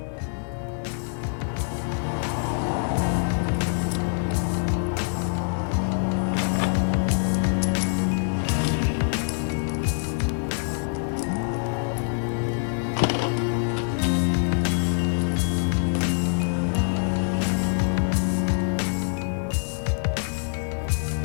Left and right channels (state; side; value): silent; right; 60 dB below the other